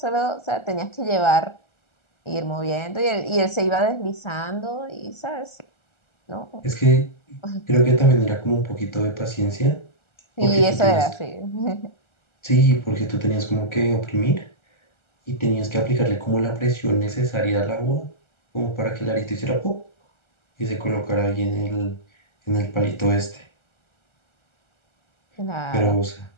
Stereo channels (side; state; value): right; late; 1.3 ms